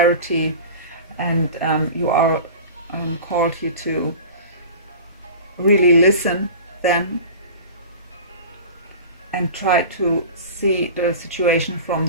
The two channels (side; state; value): both; inverted; correlation -0.36